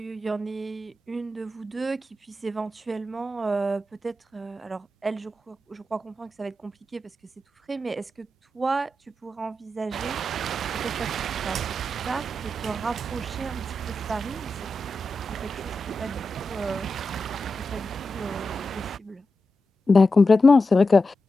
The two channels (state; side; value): normal; both; correlation 0.90